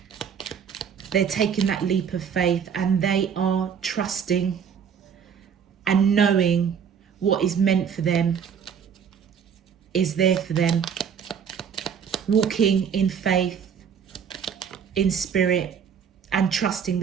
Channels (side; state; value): left; quieter; 7.4 dB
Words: they're taking that leap of faith, and they are trusting and knowing what is meant for them is there for them. Walking in faith, in spirit, and trusting